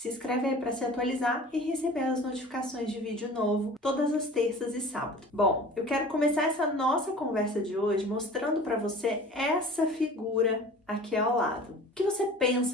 inscreve aí para se atualizar e receber as notificações de vídeo novo todas as terças e sábados. Bom, eu quero começar essa nossa conversa de hoje mostrando para você essa figura aqui ao lado. O que você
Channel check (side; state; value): both; normal; correlation 0.42